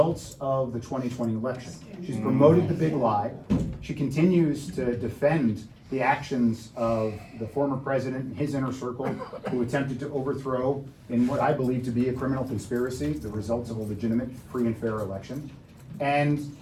of the 2020 election. She's promoted the big lie. She continues to defend the actions of the former president and his inner circle who attempted to overthrow, in what I believe to be a criminal conspiracy, the results of a legitimate, free and fair election. And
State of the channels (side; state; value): both; identical; correlation 1.00